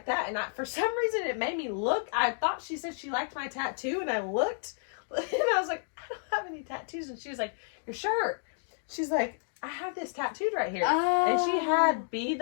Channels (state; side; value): silent; right; digital silence